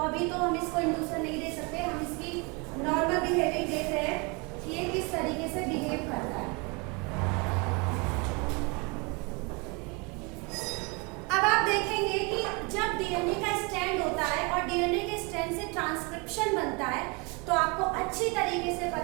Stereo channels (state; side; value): quieter; left; 29.9 dB